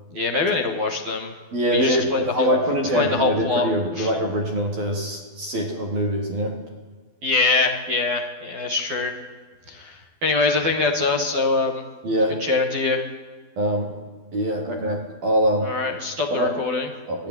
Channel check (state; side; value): late; left; 12 ms